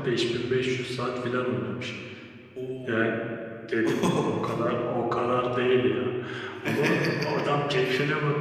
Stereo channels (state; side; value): identical; both; correlation 1.00